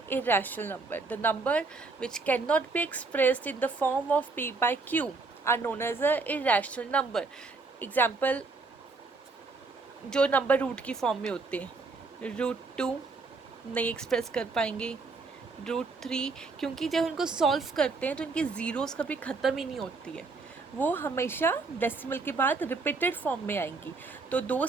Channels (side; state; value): left; quieter; 4.0 dB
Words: irrational number. The number which cannot be expressed in the form of p/q are known as a irrational number. Example, जो नंबर रूट की form में होते हैं, √2 नहीं एक्सप्रेस कर पाएंगे, √3 क्योंकि जब उनको सॉल्व करते हैं तो इनकी ज़ीरोज़ कभी ख़त्म ही नहीं होती है, वो हमेशा डेसिमल के बाद रिपीटेड फॉर्म में आएंगी। तो